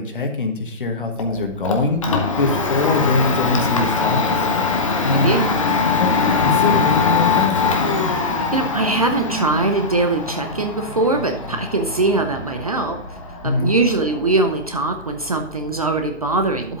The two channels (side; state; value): both; normal; correlation -0.12